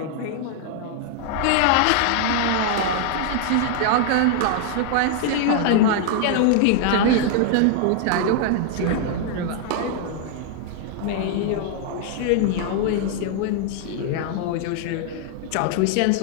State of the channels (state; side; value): different; both; correlation 0.00